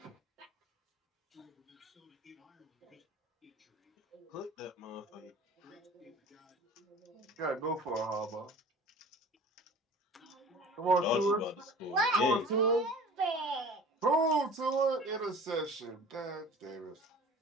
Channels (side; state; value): both; normal; correlation 0.42